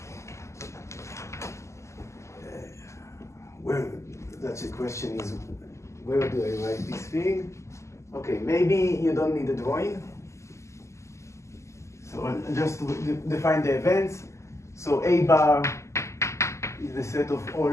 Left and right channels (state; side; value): late; right; 0.14 ms